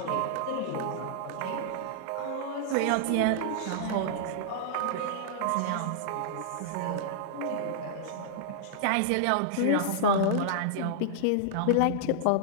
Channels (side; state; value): both; different; correlation -0.01